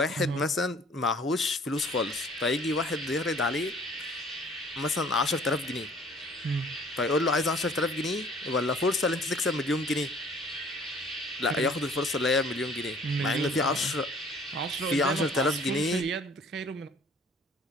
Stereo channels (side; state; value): both; normal; correlation 0.54